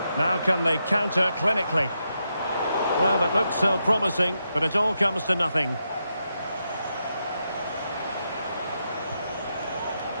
Now can they counter clinically? Well, it looked so promising, but it all comes to nothing.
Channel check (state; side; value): inverted; both; correlation -0.84